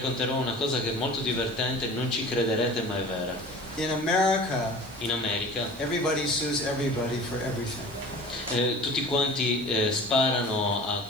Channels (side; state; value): left; noise; hiss, 25 dB below the sound